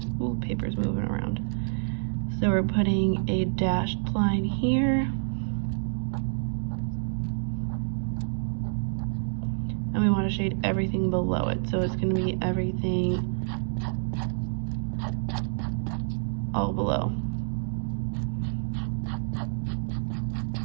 Ooh, paper's moving around. So we're putting a dashed line here. And we want to shade everything below it. So it's going to be everything all below.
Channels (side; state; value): left; silent; digital silence